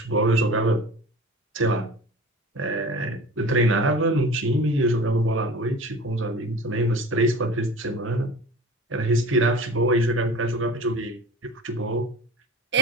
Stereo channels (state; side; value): normal; both; correlation 0.39